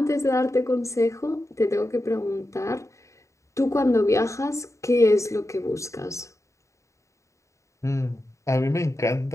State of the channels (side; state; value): right; late; 0.15 ms